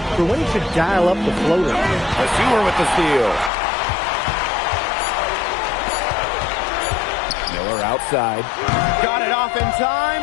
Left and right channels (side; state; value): right; drops out; at 3.5 s